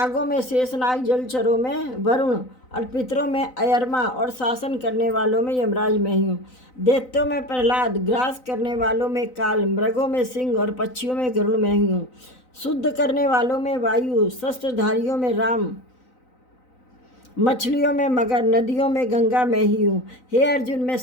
में शेषनाग, जलचरों में वरुण और पितरों में अयरमा और शासन करने वालों में यमराज मैं ही हूँ। दैत्यों में प्रहलाद, ग्रास करने वालों में काल, मृगों में सिंह और पक्षियों में गरुड़ मैं ही हूँ। शुद्ध करने वालों में वायु, शस्त्रधारियों में राम, मछलियों में मगर, नदियों में गंगा मैं ही हूँ। हे अर्जुन, मैं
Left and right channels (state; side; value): late; right; 3.9 ms